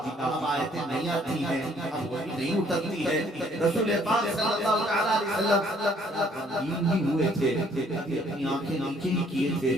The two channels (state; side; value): normal; both; correlation 0.63